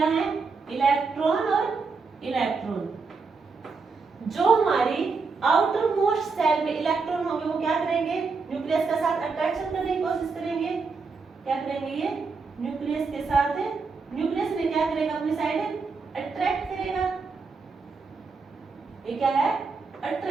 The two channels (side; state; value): left; quieter; 4.6 dB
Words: है? इलेक्ट्रॉन और इलेक्ट्रॉन। जो हमारी आउटर मोस्ट सेल में इलेक्ट्रॉन होंगे वो क्या करेंगे? न्यूक्लियस के साथ अट्रैक्शन करने की कोशिश करेंगे। क्या करेंगे? ये न्यूक्लियस के साथ, न्यूक्लियस में क्या करेगा? अपनी साइड अट्रैक्ट करेगा। ये क्या है?